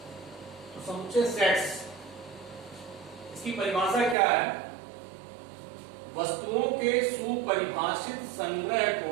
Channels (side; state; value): left; drops out; at 4.2 s